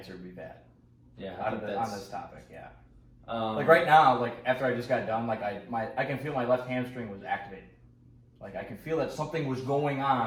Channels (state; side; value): identical; both; correlation 1.00